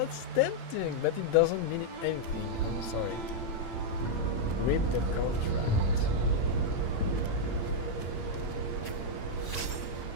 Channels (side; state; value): right; late; 9.0 ms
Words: tempting, but it doesn't mean anything. I'm sorry. Read the contract.